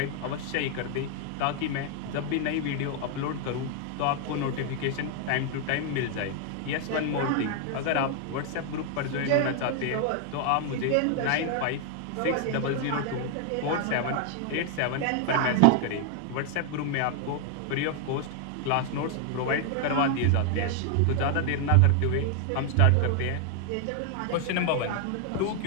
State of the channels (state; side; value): different; both; correlation 0.00